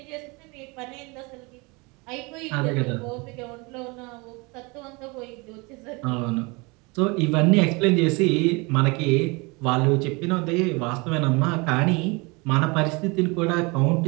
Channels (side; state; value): left; quieter; 27.5 dB